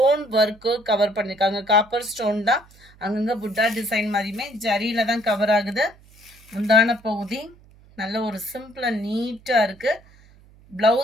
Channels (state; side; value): noise; right; hum, 26 dB below the sound